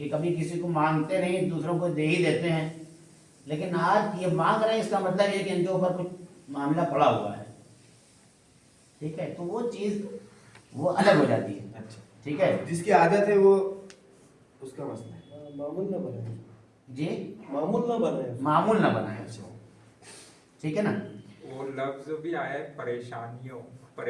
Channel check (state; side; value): identical; both; correlation 1.00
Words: कभी किसी को मांगते नहीं, दूसरों को दे ही देते हैं। लेकिन आज ये मांग रहे हैं, इसका मतलब ये कि इनके ऊपर कुछ मामला पड़ा हुआ है, ठीक है। तो वो चीज़ वो अलग हो जाती है, अच्छा, ठीक है। जिसकी आदत है वो उसका मसला है, मामूल ना बनाए जी, मामूल ना बनाए मामूल ना बनाए, ठीक है ना। वो लफ्ज भी आया है परेशानियों,